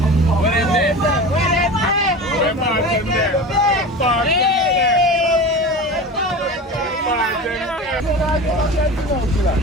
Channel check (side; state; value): both; normal; correlation 0.32